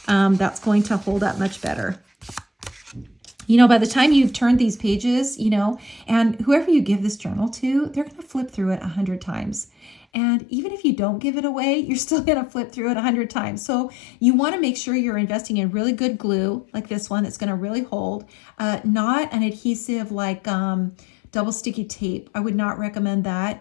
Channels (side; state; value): right; drops out; at 10.0 s